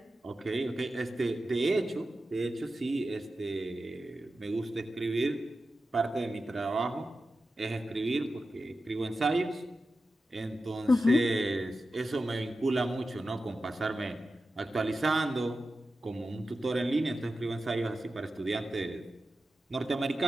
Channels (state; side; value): normal; both; correlation 0.92